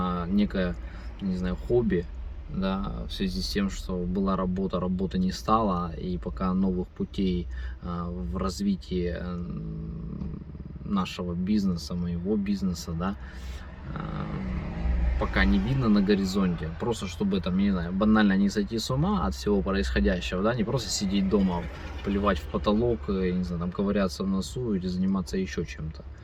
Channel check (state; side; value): identical; both; correlation 1.00